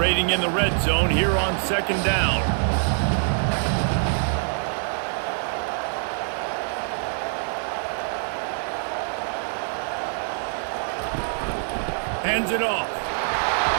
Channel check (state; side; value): silent; left; 62 dB below the other